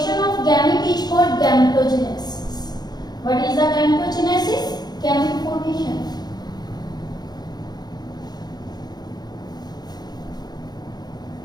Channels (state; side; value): late; right; 0.20 ms